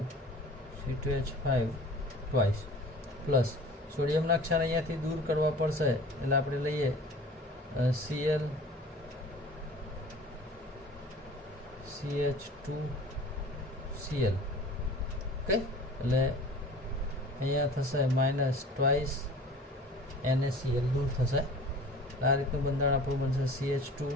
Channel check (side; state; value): both; normal; correlation 0.43